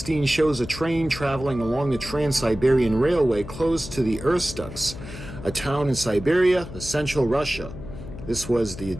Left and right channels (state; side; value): noise; left; hum, 12 dB below the sound